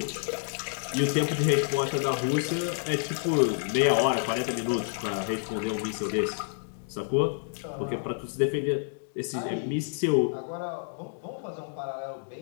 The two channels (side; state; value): right; silent; digital silence